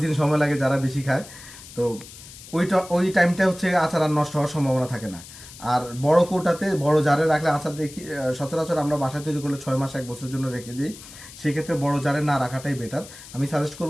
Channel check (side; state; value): left; noise; hiss, 17 dB below the sound